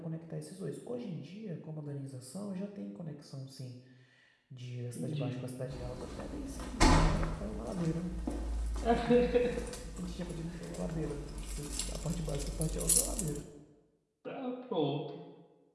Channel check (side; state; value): both; identical; correlation 1.00